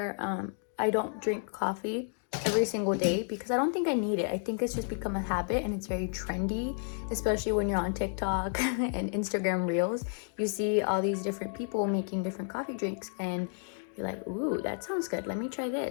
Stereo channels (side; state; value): right; silent; 55 dB below the other